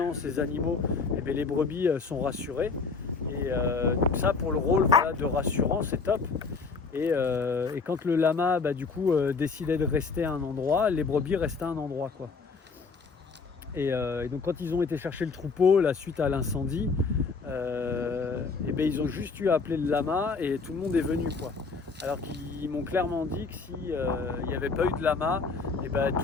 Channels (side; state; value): right; quieter; 4.7 dB